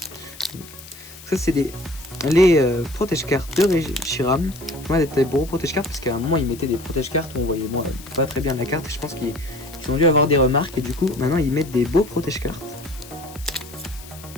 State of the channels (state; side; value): noise; left; hiss, 18 dB below the sound